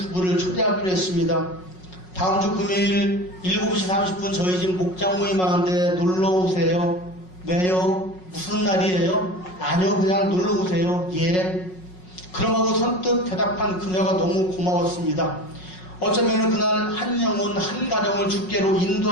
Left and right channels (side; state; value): right; late; 5.5 ms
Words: 초대하기로 했습니다. 다음 주 금요일 7시 30분 저희 집 목장 모임 하는데 놀러 오세요. 왜요? 무슨 날이에요? 아니요, 그냥 놀러 오세요. 예. 그럼하고 선뜻 대답한 그녀가 너무 고마웠습니다. 어쩌면 그날 한 영혼 한 가정을 주께로